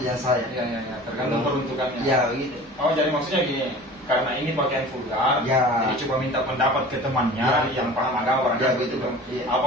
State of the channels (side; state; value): both; normal; correlation 0.41